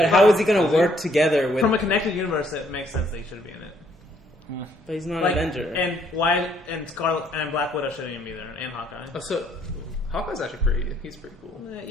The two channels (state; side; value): normal; both; correlation 0.67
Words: how is he going to work together with? From a connected universe, it makes sense that he should be in it. But he's not Like, an Avenger. and why? And Scarlet and Black Widow shouldn't even be there, and Hawkeye. Oh, so Hawkeye's actually pretty. He's pretty cool.